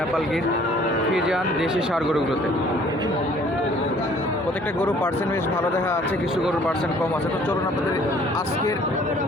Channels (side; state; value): both; normal; correlation 0.56